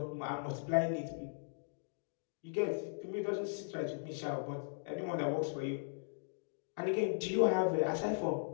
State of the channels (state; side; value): silent; right; digital silence